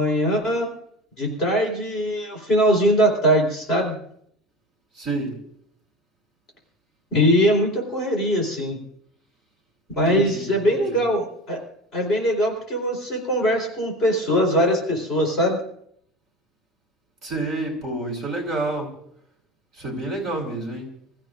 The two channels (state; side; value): normal; both; correlation 0.30